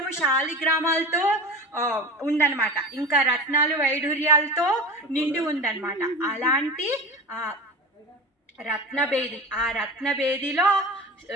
శాలిగ్రామాలతో ఉందన్నమాట. ఇంకా రత్నాలు వైఢూర్యాలతో నిండి ఉందన్నమాట. అలాంటి రత్నబేది, ఆ రత్నబేదిలో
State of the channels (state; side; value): normal; both; correlation 0.30